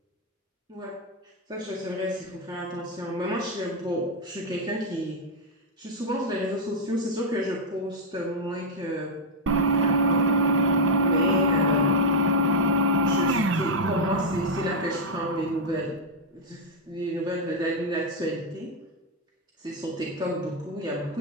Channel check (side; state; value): both; normal; correlation -0.01